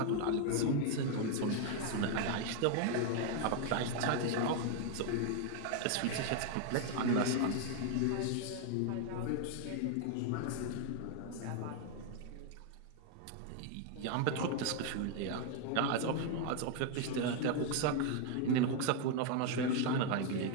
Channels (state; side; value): different; both; correlation 0.00